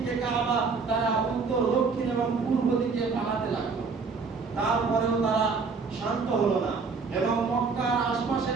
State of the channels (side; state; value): left; quieter; 4.9 dB